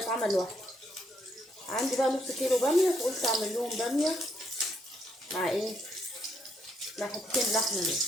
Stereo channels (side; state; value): both; normal; correlation 0.74